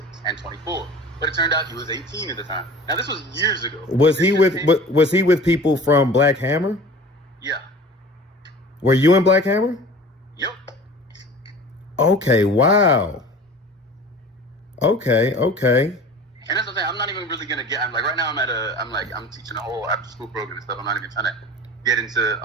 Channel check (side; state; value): both; normal; correlation 0.41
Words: and 24, but it turned out he was 18 at the time. Now this was years ago. Was he with people from Black Hammer? Yeah. Were you in Black Hammer? Yep. Okay. Wow. Okay. And that's the thing. I'm not even really gonna get. I'm like right now. I'm teaching a whole after school program and stuff. I'm not even trying to get into